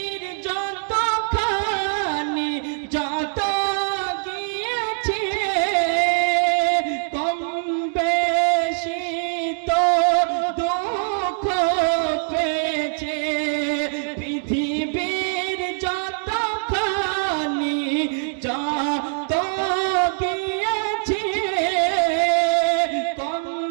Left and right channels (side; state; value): left; silent; digital silence